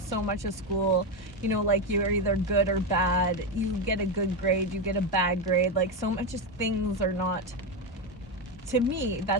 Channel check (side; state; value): both; normal; correlation 0.11